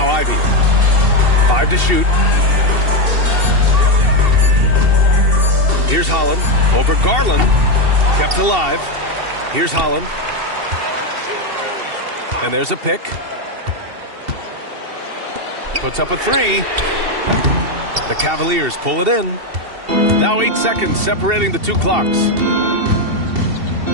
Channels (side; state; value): left; late; 2.7 ms